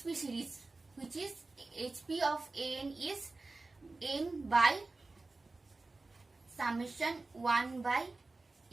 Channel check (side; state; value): left; quieter; 3.4 dB